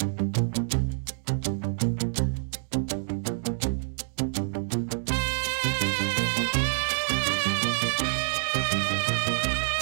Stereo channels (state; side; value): silent; left; digital silence